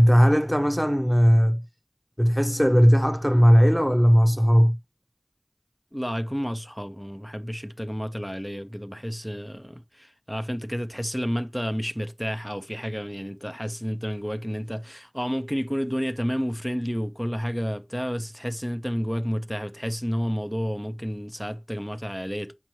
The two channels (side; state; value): both; identical; correlation 1.00